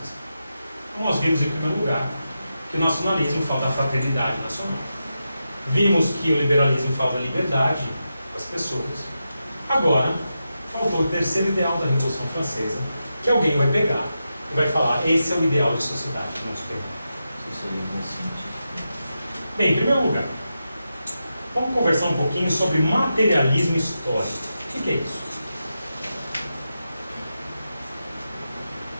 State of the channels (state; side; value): inverted; both; correlation -0.89